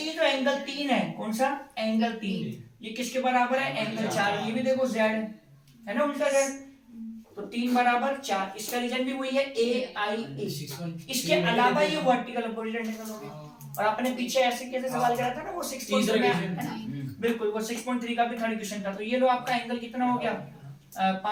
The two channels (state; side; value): identical; both; correlation 1.00